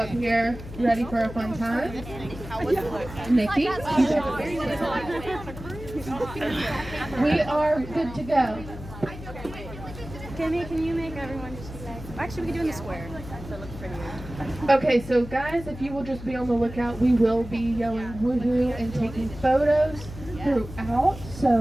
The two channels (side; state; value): left; noise; hum, 12 dB below the sound